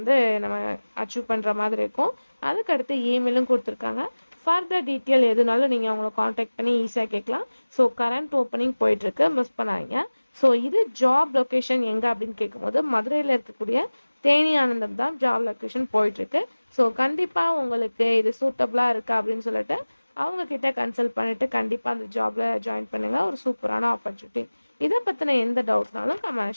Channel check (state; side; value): inverted; both; correlation -1.00